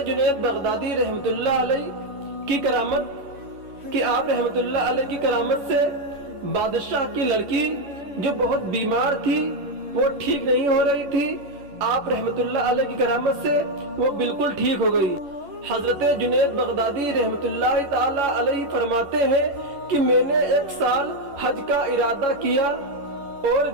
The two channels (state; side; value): late; left; 11 ms